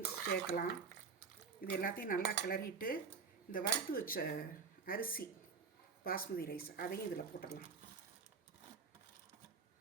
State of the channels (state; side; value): quieter; left; 5.5 dB